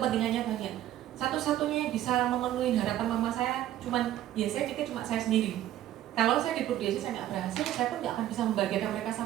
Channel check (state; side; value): quieter; left; 12.8 dB